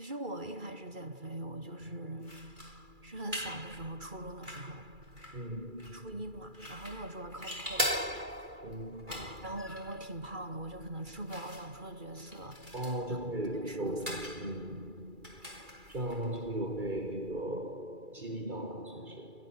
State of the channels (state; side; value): late; left; 2.3 ms